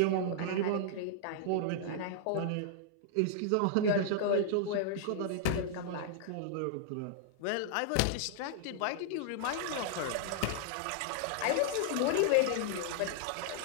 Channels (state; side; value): different; both; correlation -0.01